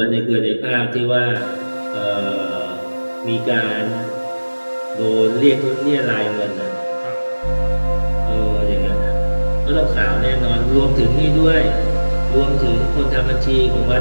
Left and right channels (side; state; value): both; inverted; correlation -1.00